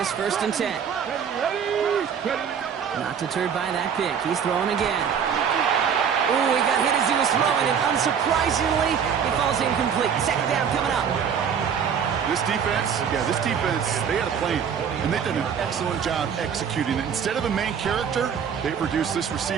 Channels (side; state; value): left; quieter; 7.5 dB